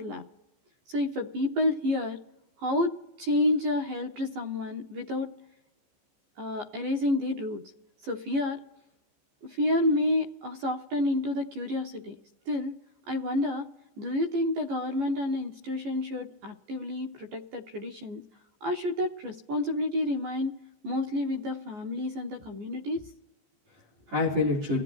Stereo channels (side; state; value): left; late; 14 ms